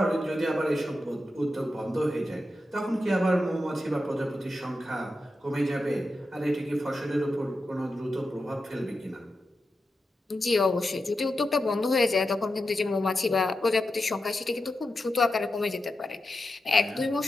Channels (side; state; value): both; normal; correlation 0.89